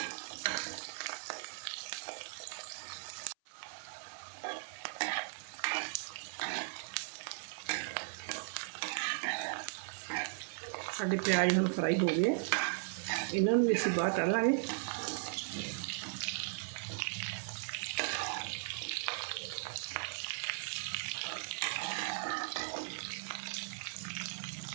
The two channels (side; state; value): left; silent; 53 dB below the other